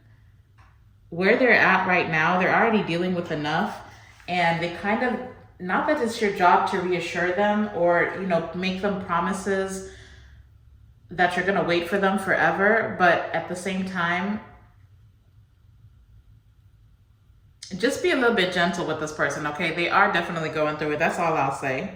where they're at right now, they're already dealing with enough, and they kind of, not that it's your job to reassure them or, make them promises that you're going to wait for them forever, but at the same time, just be a little bit gentle with this person, okay? They are definitely going through it. That's all I'll say.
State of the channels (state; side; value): identical; both; correlation 1.00